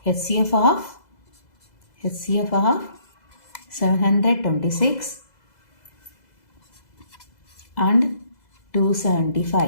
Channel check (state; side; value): late; right; 2.0 ms